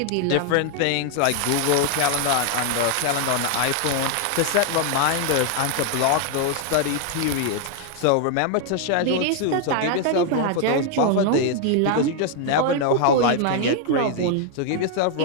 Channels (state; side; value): different; both; correlation 0.00